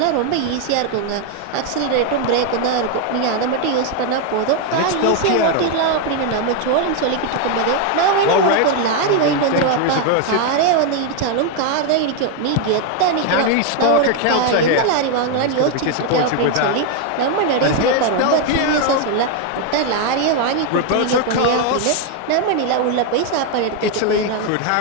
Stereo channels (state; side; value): different; both; correlation 0.01